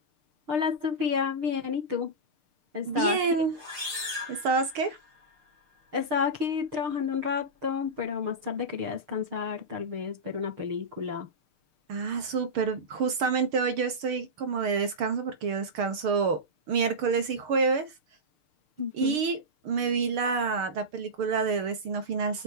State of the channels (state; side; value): late; left; 6.6 ms